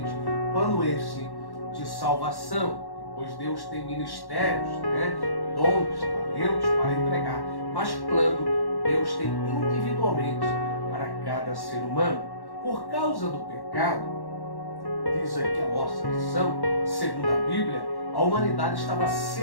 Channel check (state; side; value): late; right; 1.1 ms